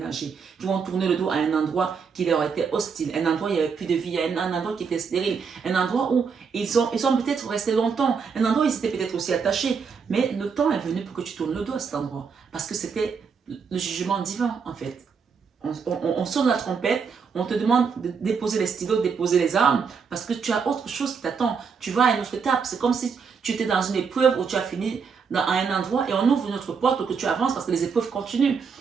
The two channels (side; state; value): left; quieter; 5.9 dB